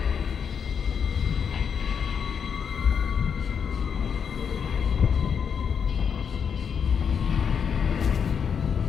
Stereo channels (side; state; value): right; quieter; 7.0 dB